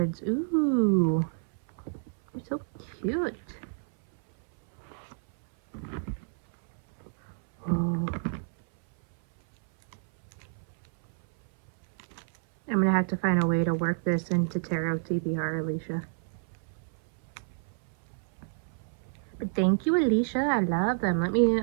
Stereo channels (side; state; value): left; silent; 58 dB below the other